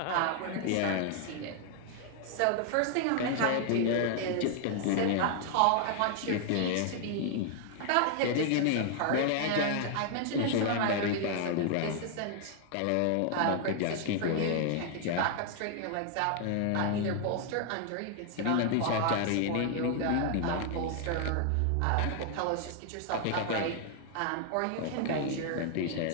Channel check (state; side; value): different; both; correlation 0.00